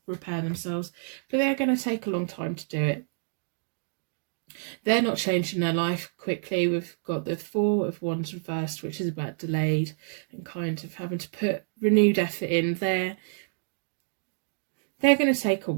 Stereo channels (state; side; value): silent; left; digital silence